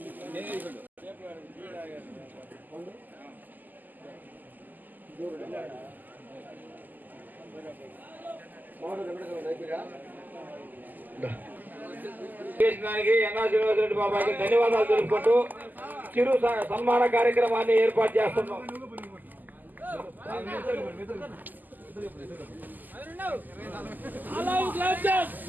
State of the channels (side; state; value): left; late; 0.085 ms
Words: శ్రీనివాసరెడ్డి బాబాకి ధన్యవాదాలు తెలుపుకుంటూ చిరు సన్మాన కార్యక్రమాన్ని ఏర్పాటు చేస్తున్నాం.